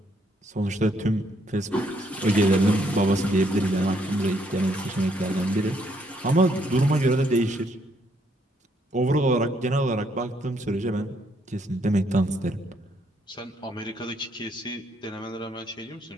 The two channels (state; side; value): normal; both; correlation 0.71